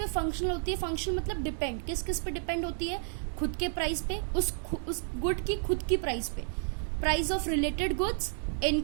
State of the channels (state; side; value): silent; left; 57 dB below the other